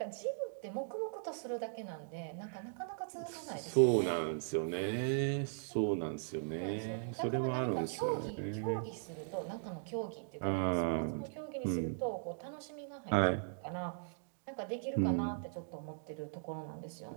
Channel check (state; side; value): silent; left; digital silence